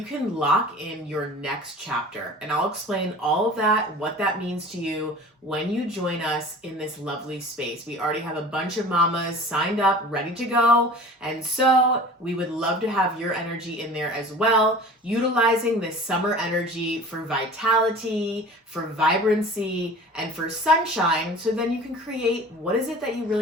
can lock in your next chapter. And I'll explain all of that, what that means to you when you join us in this lovely space. We already have a bunch of mamas signed up, ready to go. And so we would love to have your energy in there as well, utilizing this summer energy for vitality, for vibrancy, and for sunshine, so then you can create what is it that you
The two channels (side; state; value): both; normal; correlation 0.41